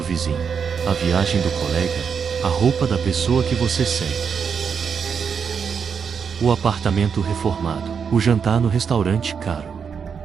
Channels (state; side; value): quieter; left; 6.5 dB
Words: vizinho, a viagem do colega, a roupa da pessoa que você segue. O apartamento reformado, o jantar no restaurante caro.